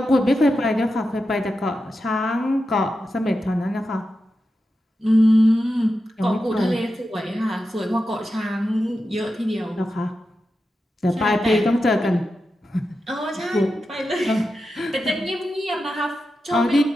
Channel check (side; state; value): both; normal; correlation 0.90